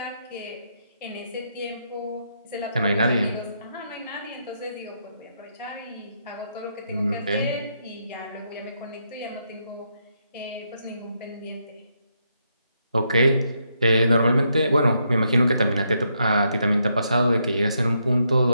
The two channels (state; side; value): inverted; both; correlation -0.78